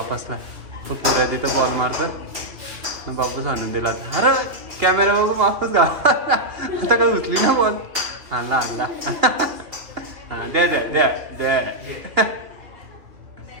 तो पुऱ्या तिथं बॉल मारतं बापूस आणून दिला. अरे कॅमेरा बघू बापूस का आता काही उचली ना बॉल. आणला आणला. हां द्या द्या द्या द्या.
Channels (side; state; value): left; late; 2.8 ms